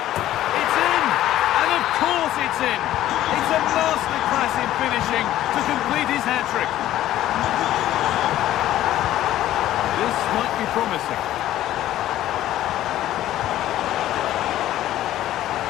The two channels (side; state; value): right; quieter; 13.5 dB